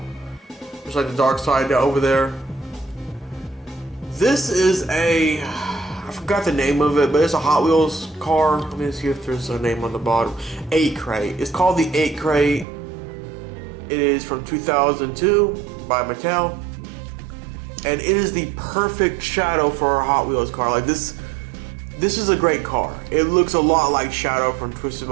just like the dark side over there. This is a, I forgot the name of it, but it's a Hot Wheels car. Let me see if there's a name on the bottom. 8 Crate. It's called the 8 Crate. It is from 2002 by Mattel. And it is the perfect Shadow for a Hot Wheels car. Like this is a great car. It looks a lot like Shadow from Twisted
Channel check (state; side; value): drops out; left; at 12.7 s